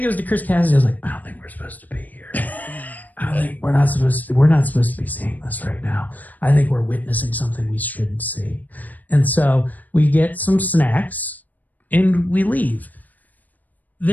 it was to Chris Cassidy. I was like, I don't think we're supposed to be here. I don't think we're not supposed to be seeing this right now. I think we're witnessing something we shouldn't see. And so we get some snacks and we leave.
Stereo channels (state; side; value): late; right; 0.082 ms